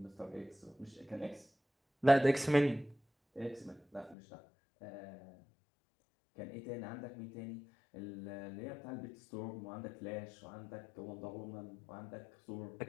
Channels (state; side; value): drops out; right; at 4.2 s